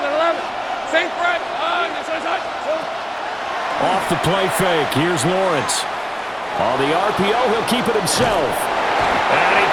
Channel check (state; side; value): identical; both; correlation 1.00